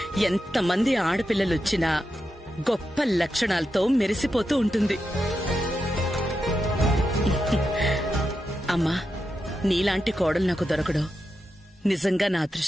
ఎంతమంది ఆడపిల్లలొచ్చినా గొప్ప లక్షణాలతో మెరిసిపోతూ ఉంటుంది. అమ్మా, నీలాంటి కోడలు నాకు దొరకడం నిజంగా నా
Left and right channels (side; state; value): both; normal; correlation 0.88